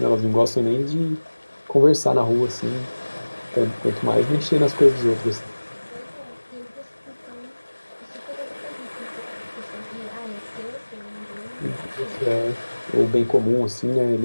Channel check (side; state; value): both; inverted; correlation -1.00